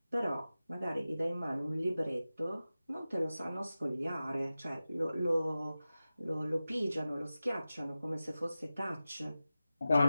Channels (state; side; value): inverted; both; correlation -0.95